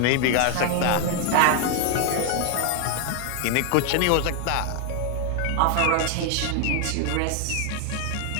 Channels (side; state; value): both; different; correlation 0.01